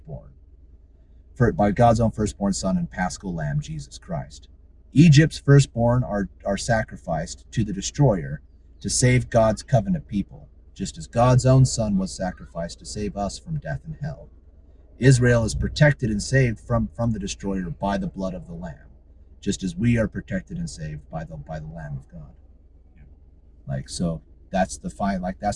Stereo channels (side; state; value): both; identical; correlation 1.00